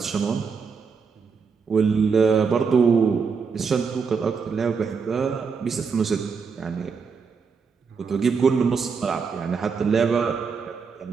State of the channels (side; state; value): left; quieter; 5.5 dB